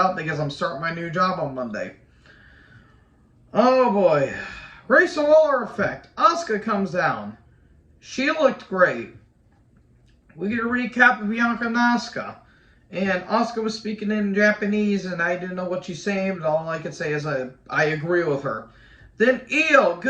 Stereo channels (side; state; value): both; identical; correlation 1.00